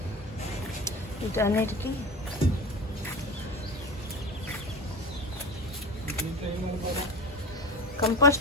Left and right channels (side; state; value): both; normal; correlation 0.30